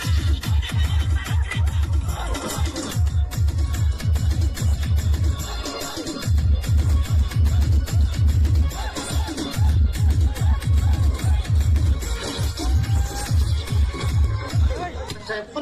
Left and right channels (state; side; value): identical; both; correlation 1.00